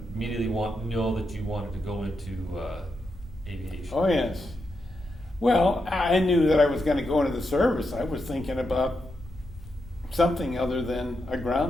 immediately know that you wanted to go into aviation? Oh, yes. Well, I knew that I was going to go into the service. I was thinking about something other than a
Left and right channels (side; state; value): both; normal; correlation 0.85